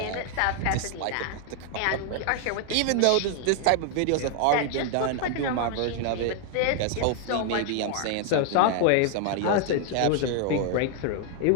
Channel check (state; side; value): different; both; correlation 0.00